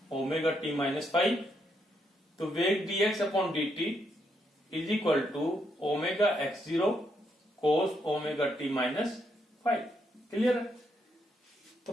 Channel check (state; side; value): normal; both; correlation 0.77